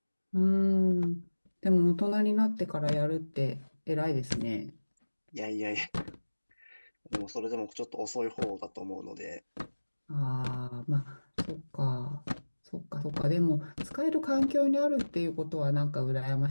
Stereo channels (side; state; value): both; inverted; correlation -1.00